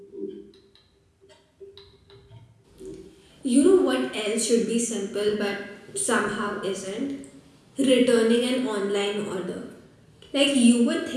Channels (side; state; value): both; identical; correlation 1.00